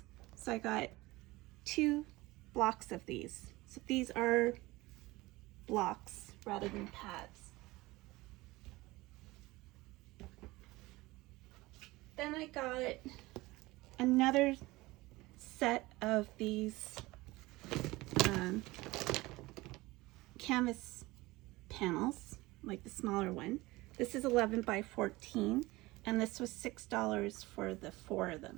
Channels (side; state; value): left; quieter; 20.5 dB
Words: So I got 2 blocks of these. So these are blocks rather than pads. Then I got another set of these canvas panels, like the smaller one. This is 11 by 14, and this was $6 for the 4 of